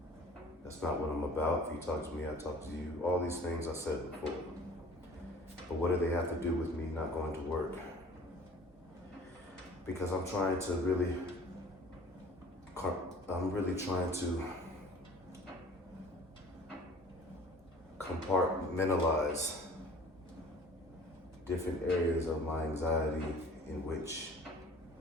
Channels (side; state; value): both; normal; correlation 0.47